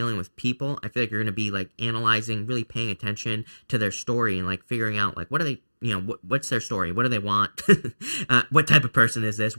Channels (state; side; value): inverted; both; correlation -1.00